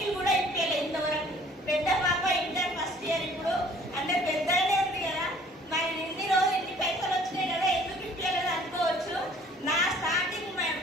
కూడా ఇప్పలేదు ఇంతవరకు. పెద్ద పాప ఇంటర్ ఫస్ట్ ఇయర్, ఇప్పుడు అందరు పెద్దనే ఉంది కదా. మరి ఇన్ని రోజులు ఇన్ని పైసలు వచ్చినాయి కదా, ఎందుకు ఇప్పలేదు అనుకోవచ్చు. నా స్టార్టింగ్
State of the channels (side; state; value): both; normal; correlation 0.55